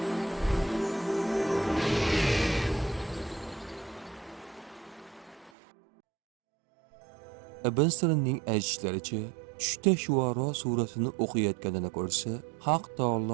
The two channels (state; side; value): drops out; left; at 5.5 s